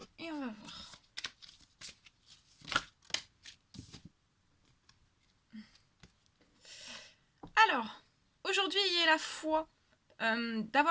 Et on va voir. Alors, aujourd'hui, ayez la foi.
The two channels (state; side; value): identical; both; correlation 1.00